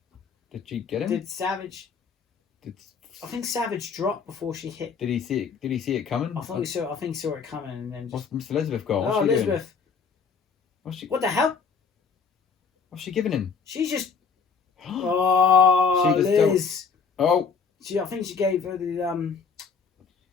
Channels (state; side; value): quieter; right; 5.7 dB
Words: Did she get him? Did Savage... I think Savage dropped before she hit. Did he see it? Did he see it coming? I think he saw it coming and then just... What's Miss Elizabeth got? Oh, Elizabeth. What the hell? What's she giving him? She's just... Oh, she just Liz. Oh. I think she gave her the